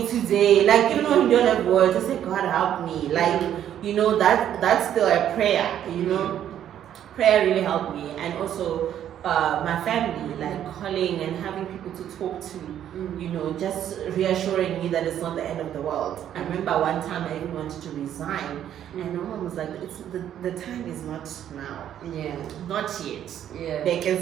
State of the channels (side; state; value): left; quieter; 10.5 dB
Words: today. Like, even when you don't have words, just say, God, help me. Like, that's still a prayer. Prayer really helped me. And also, my family, like calling and having people to talk to, just reassuring me that it's not the end of the world. I remember one time I even wanted to resign, and my mom was like, the time is not now. Not yet. They can